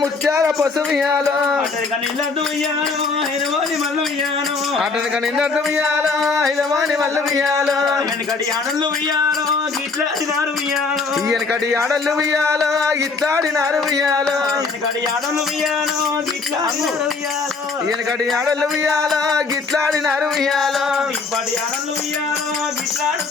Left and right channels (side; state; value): right; quieter; 4.4 dB